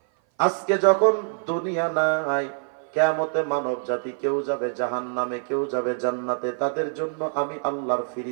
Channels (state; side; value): silent; left; 57 dB below the other